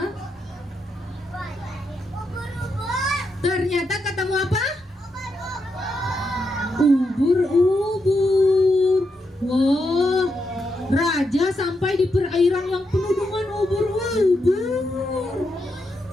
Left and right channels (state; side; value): normal; both; correlation 0.83